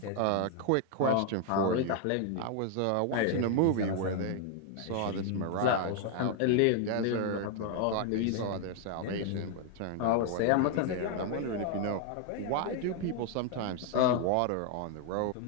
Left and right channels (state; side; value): different; both; correlation 0.00